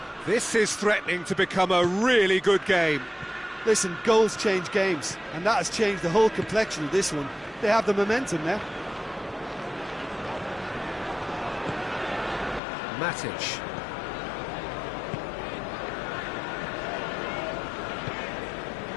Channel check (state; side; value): drops out; right; at 12.6 s